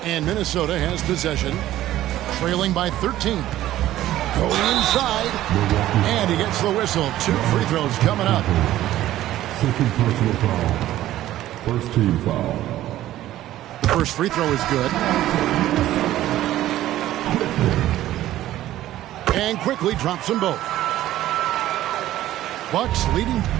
And Minnesota has possession, trailing by 13. Going inside, and he gets the whistle. 2 free throws coming up. Second personal foul. First team foul. The first free throw is good. And quickly drops them both. Bucks leading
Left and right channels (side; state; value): left; quieter; 14.0 dB